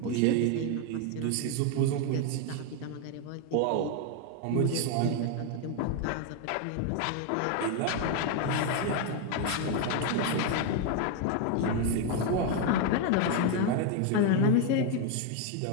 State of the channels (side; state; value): both; different; correlation 0.01